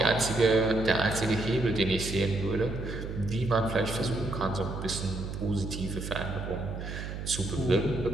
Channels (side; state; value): right; noise; hum, 7 dB below the sound